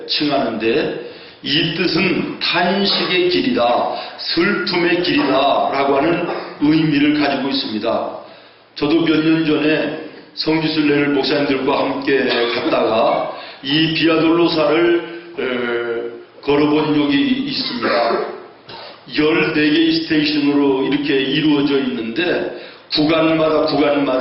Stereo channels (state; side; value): identical; both; correlation 1.00